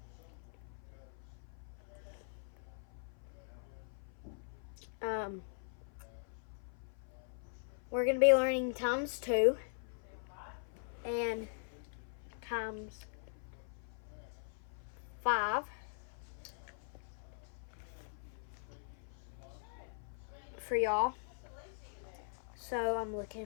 We're going to be learning times 2 and times 5 for y'all. So I'm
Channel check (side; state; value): right; silent; 50 dB below the other